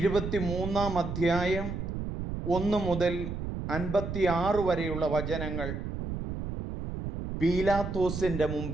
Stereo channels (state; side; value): noise; right; rumble, 5 dB below the sound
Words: അധ്യായം 1 മുതൽ 56 വരെയുള്ള വചനങ്ങൾ. പീലാത്തോസിൻ്റെ